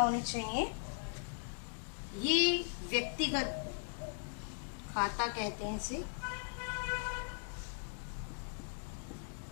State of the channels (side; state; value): right; silent; digital silence